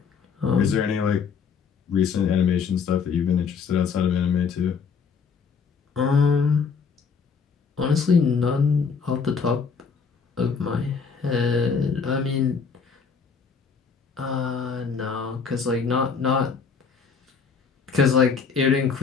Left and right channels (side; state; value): right; quieter; 5.8 dB